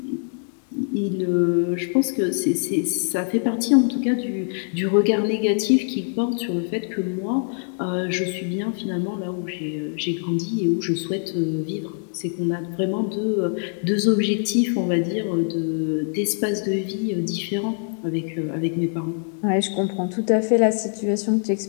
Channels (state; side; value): silent; right; 62 dB below the other